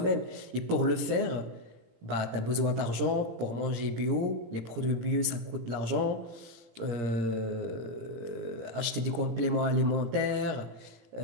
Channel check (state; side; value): late; left; 17 ms